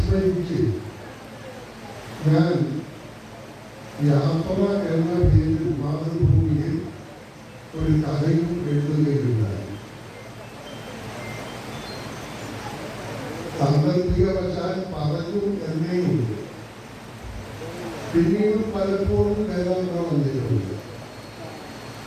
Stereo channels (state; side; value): identical; both; correlation 1.00